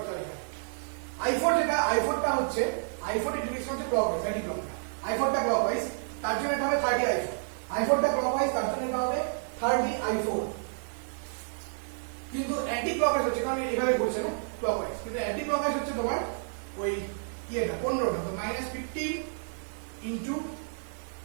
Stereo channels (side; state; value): left; silent; digital silence